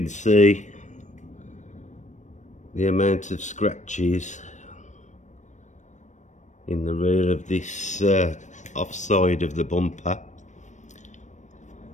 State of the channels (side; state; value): right; late; 0.35 ms